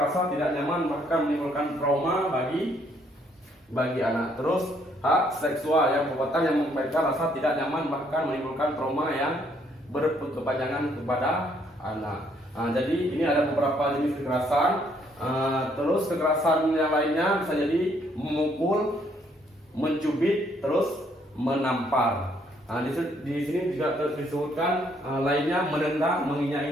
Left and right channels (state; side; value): normal; both; correlation 0.68